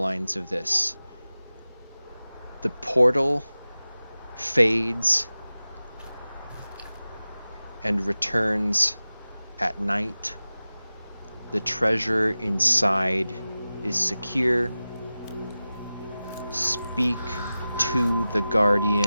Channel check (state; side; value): inverted; both; correlation -0.96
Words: of this. The portal fades and returns at night. The treasure inside is secure. Speak to the